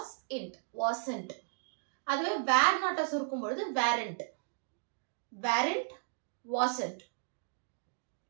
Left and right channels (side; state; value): left; silent; digital silence